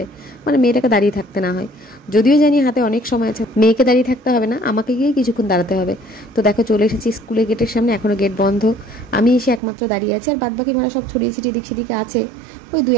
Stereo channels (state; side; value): drops out; left; at 9.6 s